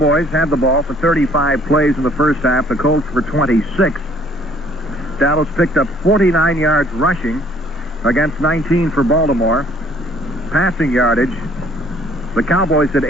had the ball for 35 plays in the first half. The Colts for 26. Dallas picked up 49 yards rushing against 19 for Baltimore. Passing yardage, the Cowboys at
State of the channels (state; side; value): normal; both; correlation 0.59